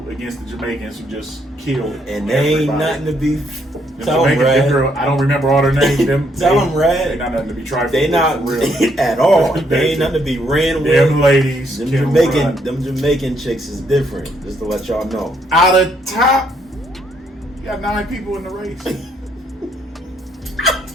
against the Jamaicans who just killed. And they ain't nothing to be. Tell them, Red. Girl, I don't remember all their names. Tell them, Red. They not nothing to be trifled. They not real at all. They ain't nothing to be ran with. Them ladies, them Jamaican chicks is different. Just to let y'all know. Out of top, you got 9 people in the race.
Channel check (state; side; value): normal; both; correlation 0.72